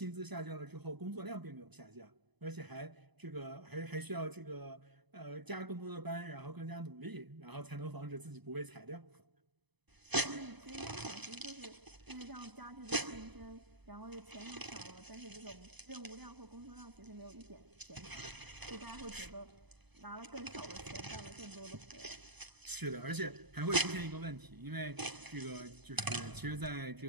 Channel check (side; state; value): left; late; 0.99 ms